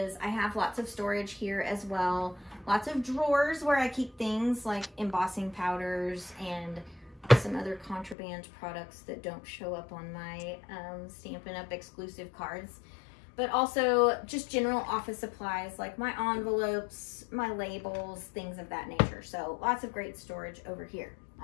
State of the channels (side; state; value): right; drops out; at 8.2 s